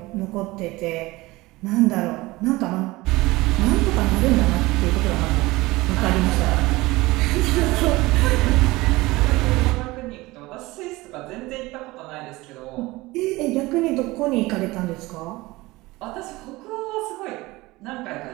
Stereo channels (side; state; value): left; quieter; 20.6 dB